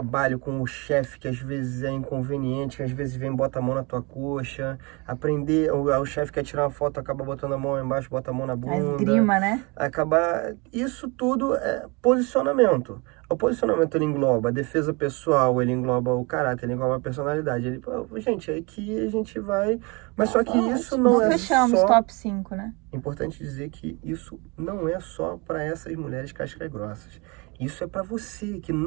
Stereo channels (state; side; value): quieter; left; 28.6 dB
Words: com o chefe, que às vezes é inconveniente, que às vezes vem e bota a mão na tua coxa. Aprender, o chefe quer tirar uma foto, acaba botando a mão embaixo, bota a mão na A bunda. esgrima, né? Acabar. Isso tudo é posicionamento. O posicionamento ele engloba a defesa pessoal, ele engloba o caráter, ele engloba a personalidade. Ele, gente, aqui a gente vai. Mas só que isso não é Fechamos só. top 5, né? Importante dizer que isso não é só para essas mulheres cascas grossas. Isso é para você que